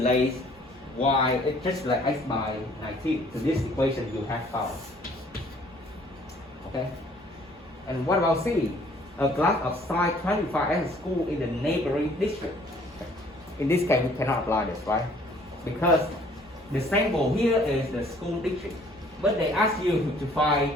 y, just like x by 19 to this equation you have found. Okay. And what about C? A class of size 25 as a school in the neighboring district. Okay. In this case, we cannot apply this, right? Because the sample here is the school district, but they ask you to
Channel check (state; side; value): normal; both; correlation 0.58